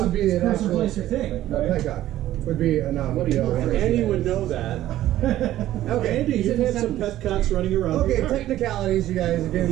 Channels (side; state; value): left; quieter; 13.8 dB